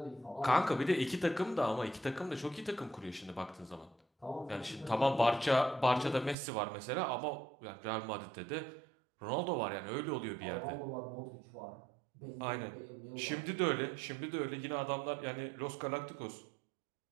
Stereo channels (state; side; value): drops out; left; at 6.4 s